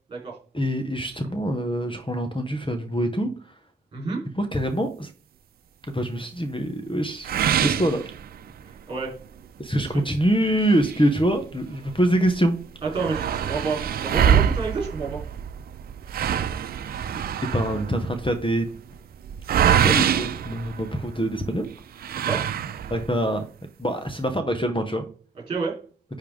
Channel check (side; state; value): left; quieter; 3.2 dB